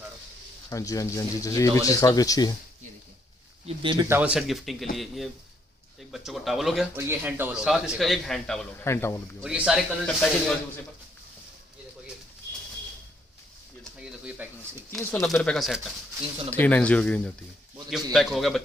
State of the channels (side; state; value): both; normal; correlation 0.71